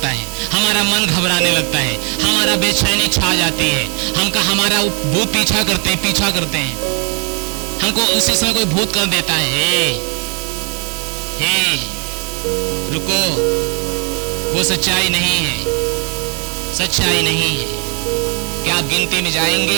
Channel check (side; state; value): left; quieter; 35.5 dB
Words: है, हमारा मन घबराने लगता है, हमारा बेचैनी छा जाती है, हमारा भूत पीछा करते हैं, हमको उसी समय कोई भूत कर देता है, हे रुको, वो सच्चाई नहीं है, सच्चाई नहीं है। क्या आप गिनती में